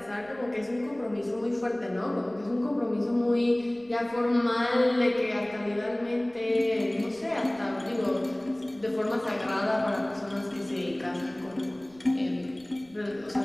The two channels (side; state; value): right; noise; rumble, 28 dB below the sound